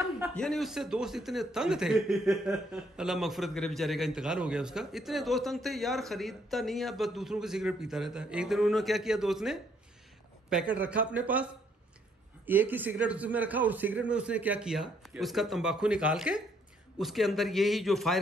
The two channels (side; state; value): both; normal; correlation 0.69